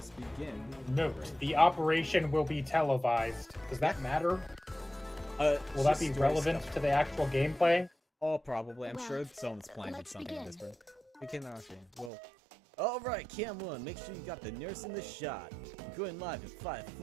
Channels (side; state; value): left; drops out; at 12.1 s